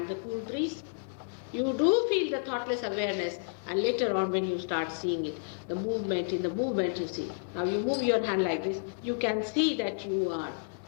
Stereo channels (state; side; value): silent; right; digital silence